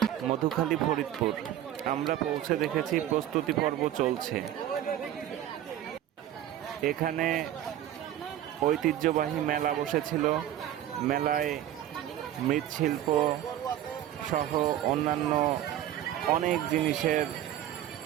মধুখালী, ফরিদপুর। আমরা পৌঁছে দেখেছি প্রস্তুতি পর্ব চলছে। এখানে ঐতিহ্যবাহী মেলা বসেছিল। মেলায় মৃৎশিল্প সহ অন্যান্য অনেক জিনিসের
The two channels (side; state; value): left; quieter; 12.0 dB